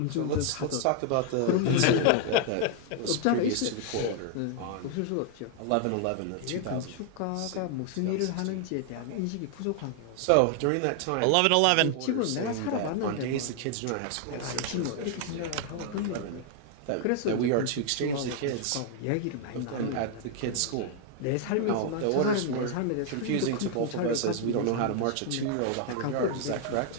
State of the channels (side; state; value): both; different; correlation 0.00